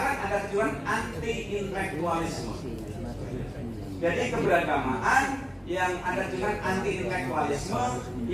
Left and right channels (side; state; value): both; identical; correlation 1.00